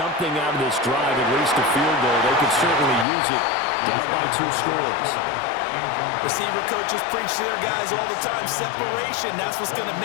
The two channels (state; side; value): drops out; right; at 3.1 s